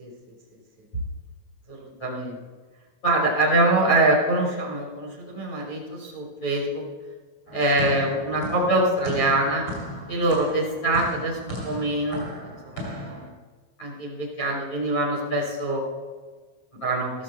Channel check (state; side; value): late; right; 9.0 ms